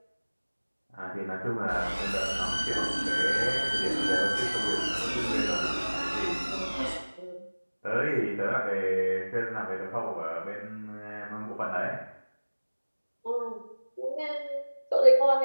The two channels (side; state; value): both; inverted; correlation -1.00